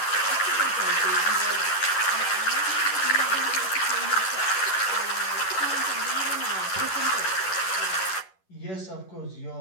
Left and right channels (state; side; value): late; right; 11 ms